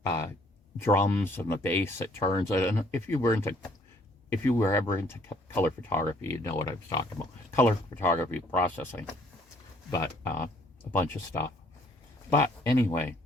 drums and the bass that turns it. And if you were ever into color photography, you'd know what I was talking about. Color photography processing, but a bunch of stuff. But anyway,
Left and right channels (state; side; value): normal; both; correlation 0.63